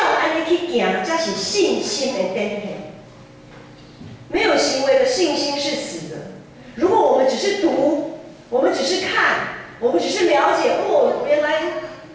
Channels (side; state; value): both; identical; correlation 1.00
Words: 安尼去行，才是信心的展现。没有行为的信心是死的。如果我们只是读，我们只是看，我们只是了解，原来